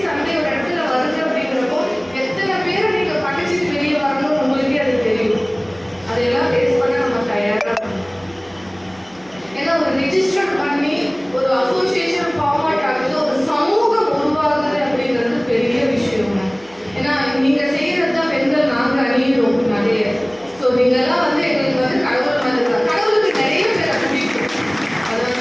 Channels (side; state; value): right; noise; hum, 29 dB below the sound